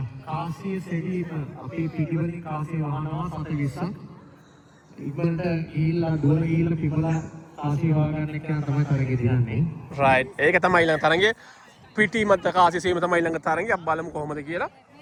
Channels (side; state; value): both; identical; correlation 1.00